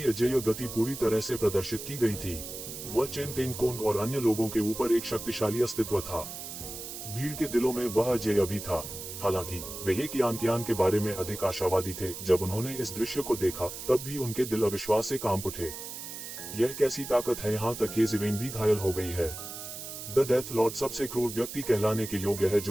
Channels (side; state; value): right; noise; hiss, 9 dB below the sound